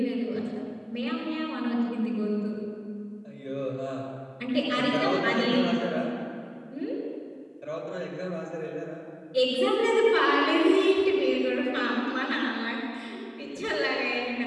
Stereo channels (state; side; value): identical; both; correlation 1.00